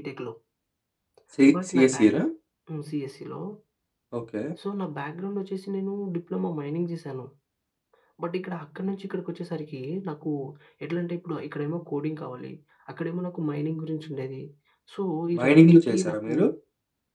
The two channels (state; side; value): identical; both; correlation 1.00